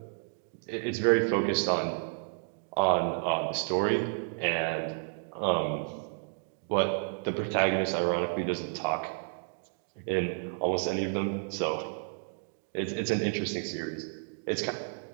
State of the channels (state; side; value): silent; left; digital silence